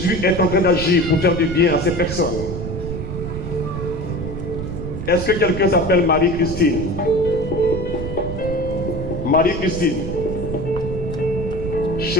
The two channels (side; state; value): right; noise; rumble, 6 dB below the sound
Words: est en train d'agir pour faire du bien à ces personnes. Est-ce que quelqu'un s'appelle Marie-Christine? Marie-Christine.